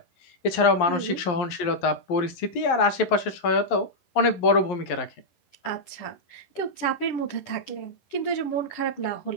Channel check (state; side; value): late; right; 11 ms